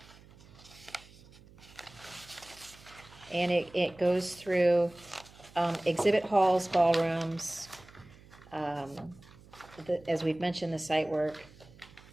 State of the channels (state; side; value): noise; right; hum, 23 dB below the sound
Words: And it goes through exhibit halls, ballrooms, as we've mentioned, the site work,